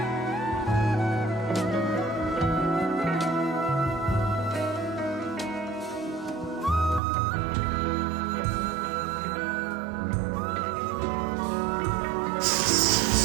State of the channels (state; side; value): drops out; left; at 7.0 s